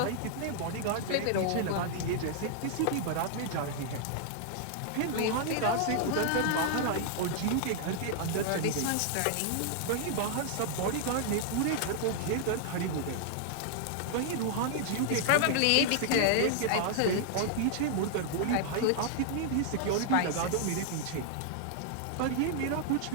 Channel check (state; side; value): different; both; correlation 0.00